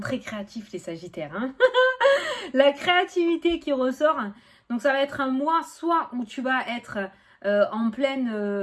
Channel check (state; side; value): identical; both; correlation 1.00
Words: très créatifs, les Sagittaires, hein. La créativité qui ressort. Donc, ça va être un mois, soit où tu vas être en